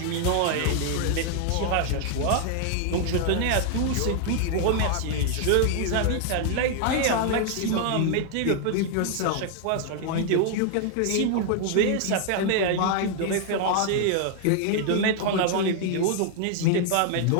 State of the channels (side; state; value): both; different; correlation 0.00